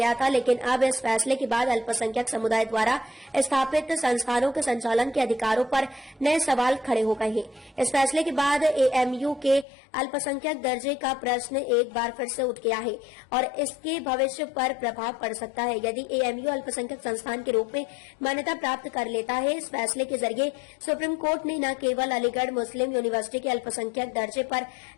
था, लेकिन अब इस फैसले के बाद अल्पसंख्यक समुदाय द्वारा स्थापित संस्थानों के संचालन के अधिकारों पर नए सवाल खड़े हो गए हैं। इस फैसले के बाद AMU के अल्पसंख्यक दर्जे का प्रश्न एक बार फिर से उठ गया है और इसके भविष्य पर प्रभाव पड़ सकता है। यदि AMU अल्पसंख्यक संस्थान के रूप में मान्यता प्राप्त कर लेता है, इस फैसले के जरिए सुप्रीम कोर्ट ने न केवल अलीगढ़ मुस्लिम यूनिवर्सिटी के अल्पसंख्यक दर्जे पर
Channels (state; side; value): drops out; right; at 9.7 s